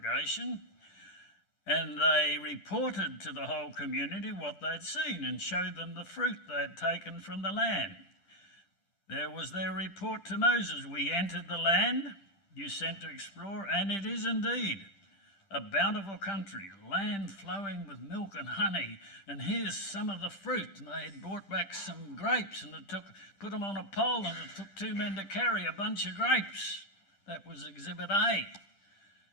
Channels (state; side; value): late; right; 10 ms